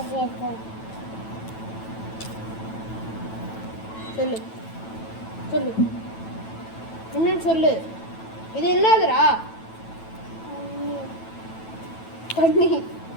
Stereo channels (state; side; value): late; right; 9.1 ms